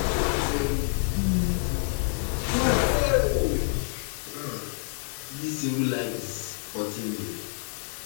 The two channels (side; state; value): right; silent; 60 dB below the other